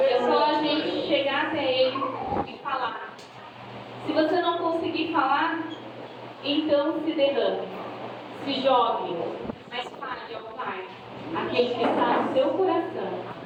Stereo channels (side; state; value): both; identical; correlation 1.00